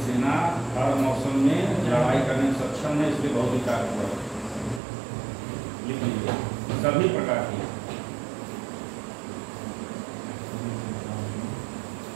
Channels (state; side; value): drops out; left; at 4.8 s